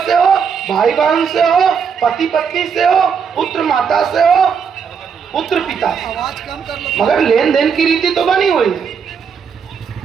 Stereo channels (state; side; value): quieter; left; 6.5 dB